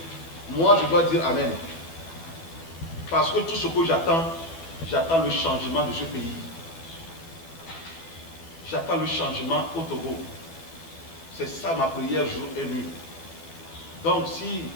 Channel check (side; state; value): right; late; 12 ms